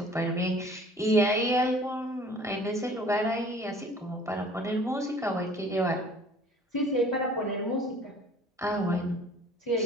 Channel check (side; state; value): both; normal; correlation 0.50